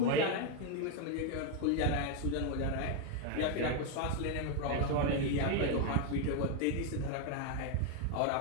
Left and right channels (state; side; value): different; both; correlation 0.01